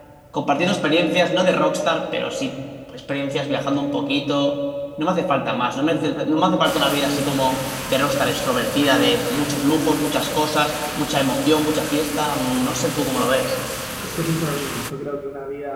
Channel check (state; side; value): identical; both; correlation 1.00